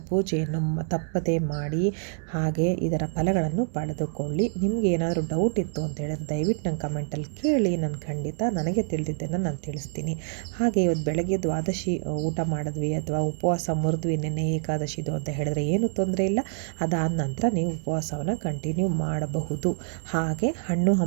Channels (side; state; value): left; silent; 60 dB below the other